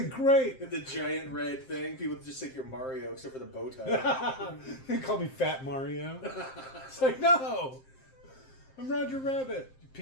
great. The giant red thing. People just think you're Mario, except for the bow tie. They call me Fat Mario. It's like, no. I'm Roger Rabbit. You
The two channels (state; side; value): late; right; 7.6 ms